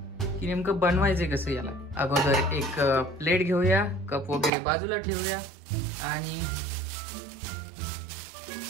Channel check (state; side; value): drops out; left; at 4.5 s